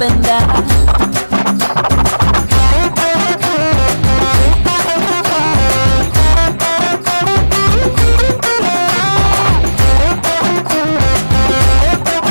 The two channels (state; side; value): inverted; both; correlation -1.00